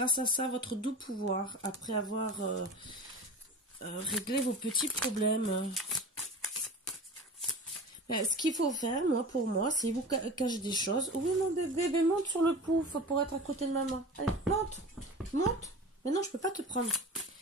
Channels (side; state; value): both; normal; correlation 0.34